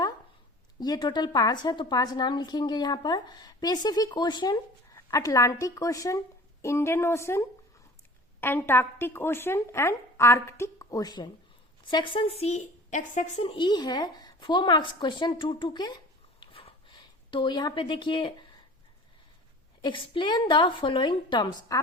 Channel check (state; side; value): normal; both; correlation 0.43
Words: ये टोटल 5 है तो 5 नाम लिखेंगे यहाँ पर। Pacific ocean, Atlantic ocean, Indian ocean, Antarctic ocean and Arctic ocean. Section E है 4 मार्क्स क्वेश्चन 2 के। तो यहाँ पे देखिए एक्सप्लेन द फॉलोइंग टर्म्स,